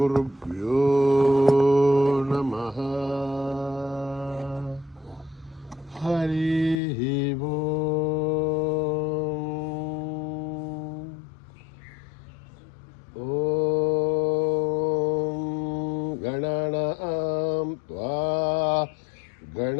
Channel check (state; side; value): drops out; right; at 6.8 s